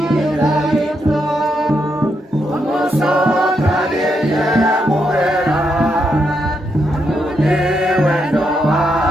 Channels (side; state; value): both; normal; correlation 0.81